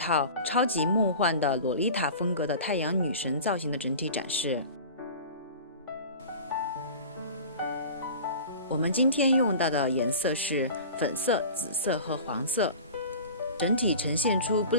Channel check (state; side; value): inverted; both; correlation -0.37